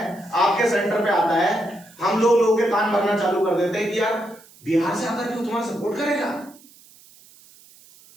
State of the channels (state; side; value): noise; right; hiss, 25 dB below the sound